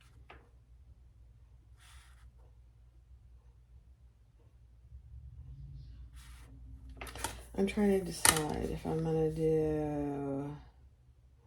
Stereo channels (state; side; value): identical; both; correlation 1.00